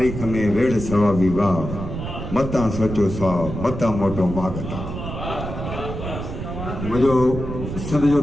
में वेड़ सवा विवाह मता सोचो सा मता मोटो मागता मुझो सद जो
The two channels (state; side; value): noise; right; rumble, 6 dB below the sound